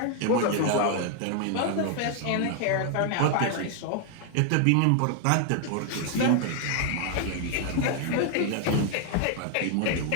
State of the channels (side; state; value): both; different; correlation 0.00